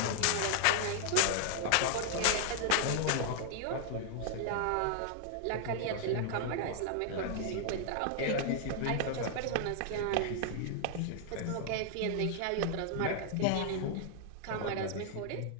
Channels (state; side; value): different; both; correlation -0.01